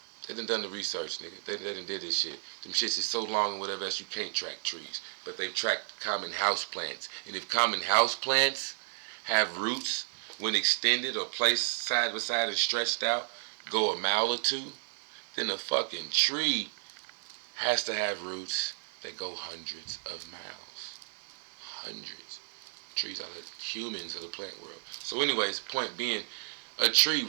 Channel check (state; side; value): silent; left; digital silence